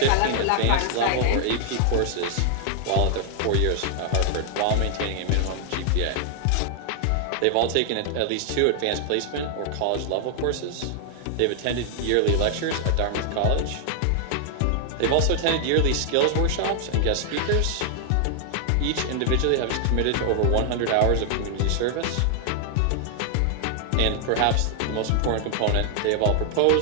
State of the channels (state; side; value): different; both; correlation 0.00